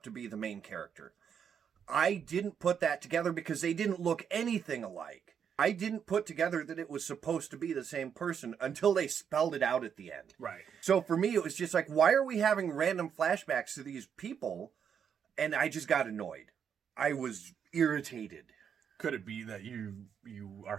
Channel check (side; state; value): left; quieter; 7.7 dB